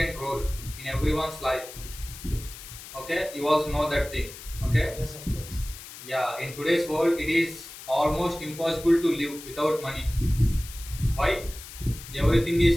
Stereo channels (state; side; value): noise; left; hiss, 14 dB below the sound